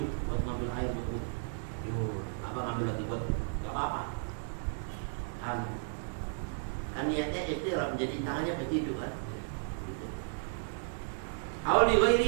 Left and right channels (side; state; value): left; silent; digital silence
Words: buat ngambil air buat wudhu. Apa ngambil lagi buat enggak apa-apa. Kan niatnya iqtiraf menjadi tangannya berciduk kan. Gitu. Awal li